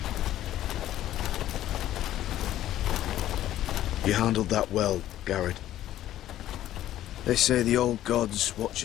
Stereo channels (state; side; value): quieter; right; 13.0 dB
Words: You handled that well, Garrett. They say the old gods watch